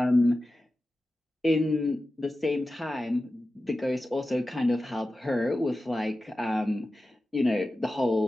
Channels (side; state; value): both; normal; correlation 0.94